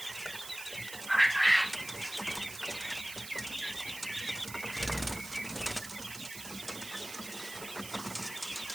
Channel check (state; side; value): noise; right; hiss, 11 dB below the sound